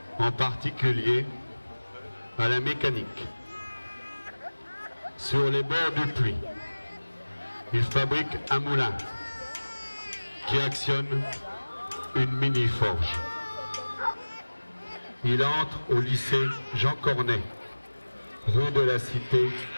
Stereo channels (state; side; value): inverted; both; correlation -1.00